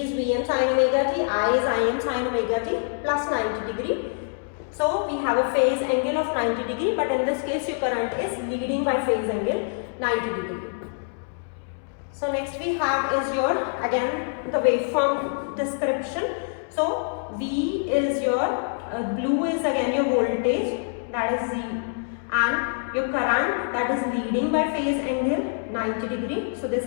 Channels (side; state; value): right; silent; 62 dB below the other